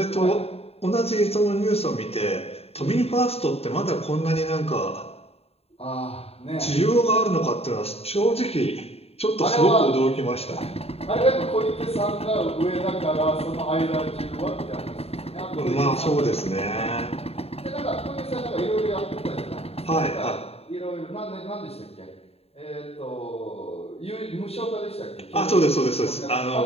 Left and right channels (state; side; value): late; right; 0.29 ms